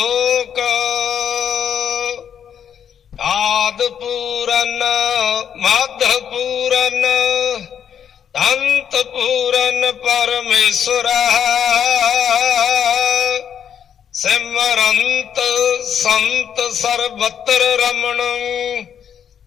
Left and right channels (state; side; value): quieter; right; 8.5 dB